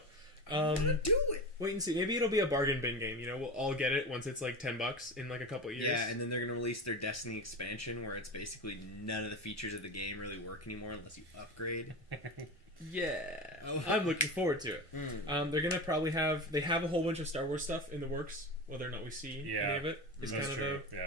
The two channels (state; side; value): normal; both; correlation 0.26